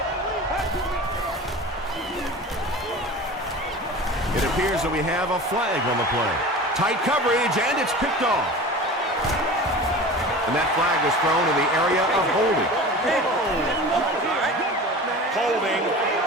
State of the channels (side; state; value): both; normal; correlation 0.36